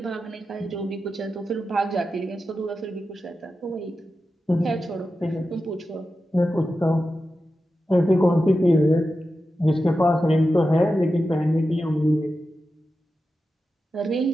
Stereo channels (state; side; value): normal; both; correlation 0.91